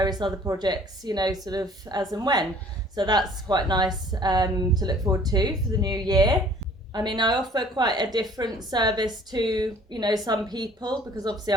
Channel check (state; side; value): normal; both; correlation 0.53